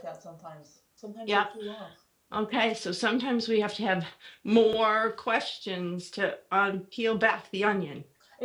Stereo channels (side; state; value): both; identical; correlation 1.00